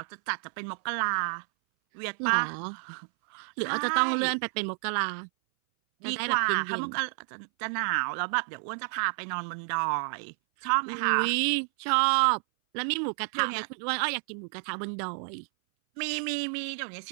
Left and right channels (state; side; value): silent; left; 58 dB below the other